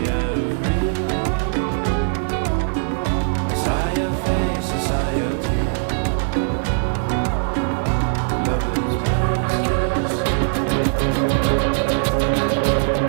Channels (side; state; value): left; silent; digital silence